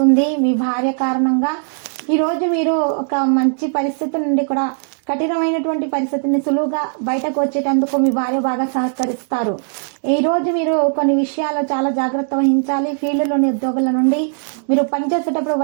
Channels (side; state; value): left; silent; 66 dB below the other